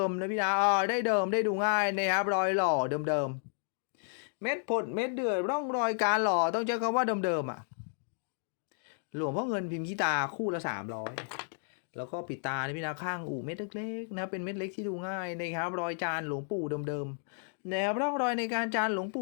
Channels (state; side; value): silent; right; 56 dB below the other